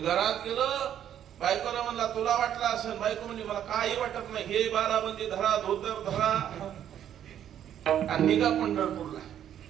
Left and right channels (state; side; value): quieter; left; 10.2 dB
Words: गेलं. बायकोला म्हणला, तुला वाटला असेल. बायको म्हणजे, मला काही वाटत नाही. हे 12 धरा, धोतर धरा आणि निघा पंढरपूरला.